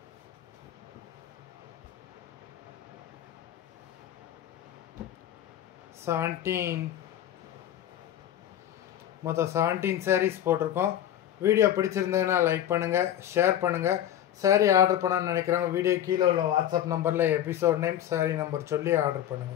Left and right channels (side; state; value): right; quieter; 11.2 dB